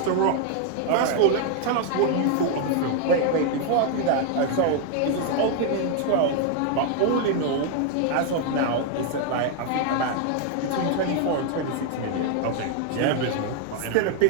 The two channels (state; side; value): different; both; correlation 0.00